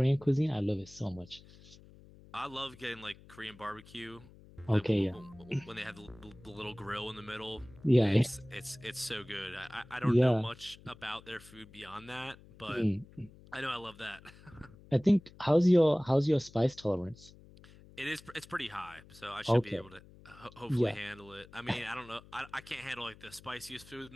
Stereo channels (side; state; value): left; noise; hum, 22 dB below the sound